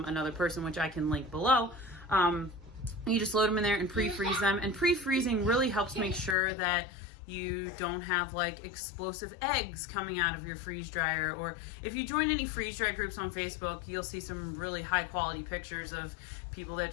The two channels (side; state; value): right; drops out; at 6.4 s